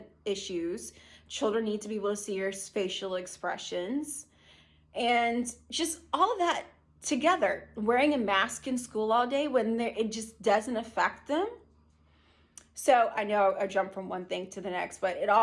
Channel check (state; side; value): identical; both; correlation 1.00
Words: issues, children need to be able to see your facial expressions, and just all of that together. Wearing a mask in school all day when it just doesn't affect them. So I know I jumped from one thing to the next, but it